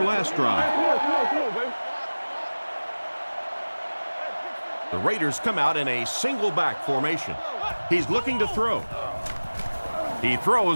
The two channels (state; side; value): inverted; both; correlation -1.00